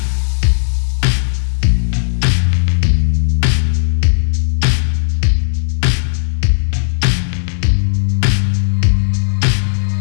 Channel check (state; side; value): silent; right; digital silence